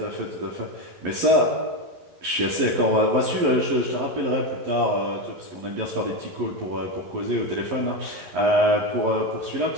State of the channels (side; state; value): left; late; 11 ms